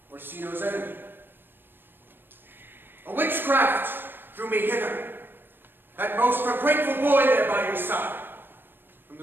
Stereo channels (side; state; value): left; late; 0.097 ms